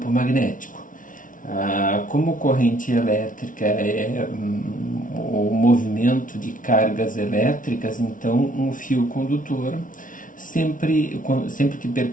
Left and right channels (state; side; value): late; right; 0.38 ms